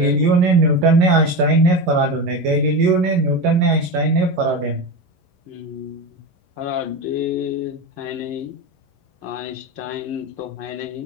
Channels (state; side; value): late; left; 11 ms